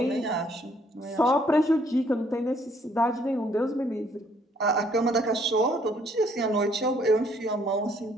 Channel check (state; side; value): normal; both; correlation 0.65